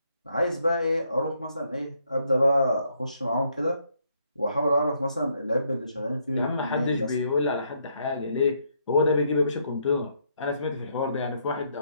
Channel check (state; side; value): inverted; both; correlation -0.73